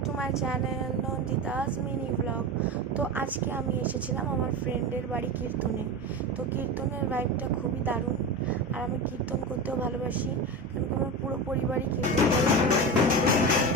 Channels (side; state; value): both; normal; correlation 0.23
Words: মাই channel Nandita's mini blog. তো আজকে আমি এসেছিলাম আমার ফ্রেন্ডের বাড়ি কীর্তনে। তো কীর্তনের ভাইবটা খুবই দারুণ, আর আমি কীর্তন করতেও ভালোবাসি, কারণ আমার পুরো পরিবারই কীর্তন করে।